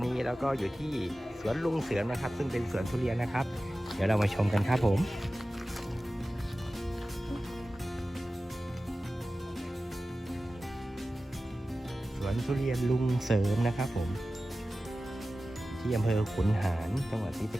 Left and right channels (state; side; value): normal; both; correlation 0.95